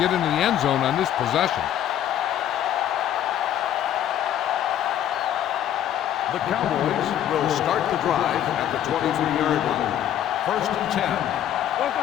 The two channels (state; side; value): quieter; right; 11.0 dB